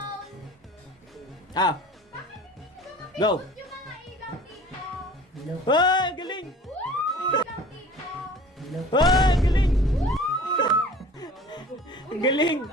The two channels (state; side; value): normal; both; correlation 0.45